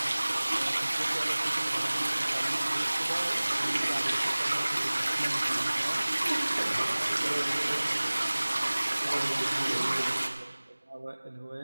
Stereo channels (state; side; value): inverted; both; correlation -1.00